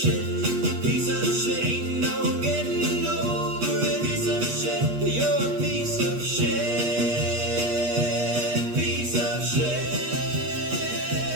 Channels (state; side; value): late; left; 8.3 ms